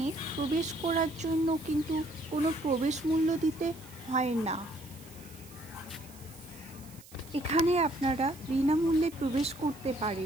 প্রবেশ করার জন্য কিন্তু কোনো প্রবেশ মূল্য দিতে হয় না। এখানে আপনারা বিনামূল্যে প্রবেশ করতে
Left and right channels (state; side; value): noise; right; hiss, 21 dB below the sound